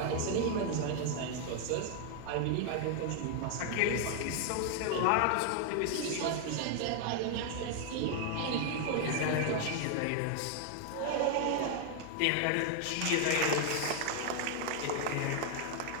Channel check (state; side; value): different; both; correlation 0.00